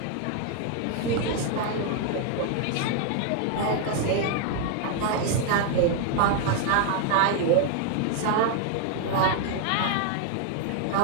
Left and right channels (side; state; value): both; different; correlation 0.00